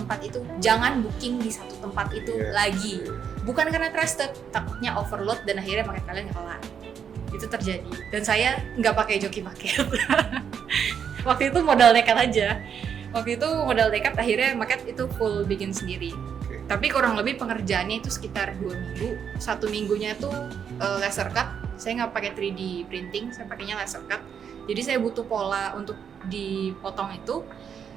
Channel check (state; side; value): quieter; left; 7.6 dB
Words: itu, jangan booking di satu tempat itu lagi. Bukan karena trusted, takutnya overload dan akhirnya maket kalian nggak kelar. Itu terjadi, dan saya nggak pakai joki maket. Waktu itu modal nekat aja. Akhirnya maket itu full bikin sendiri. Tapi kurang lebih pengerjaannya itu sekitar 2 minggu. 1 minggunya tuh laser cut. Saya nggak pakai 3D printing, saya pakainya laser cut. Jadi saya butuh pola untuk dipotong itu,